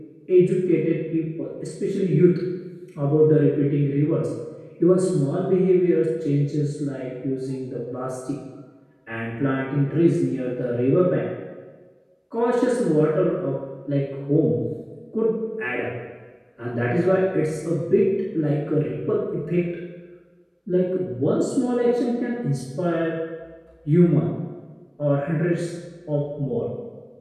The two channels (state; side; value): identical; both; correlation 1.00